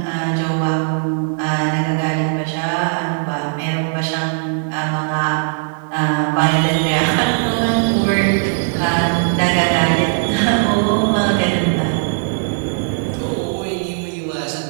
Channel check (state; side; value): silent; left; digital silence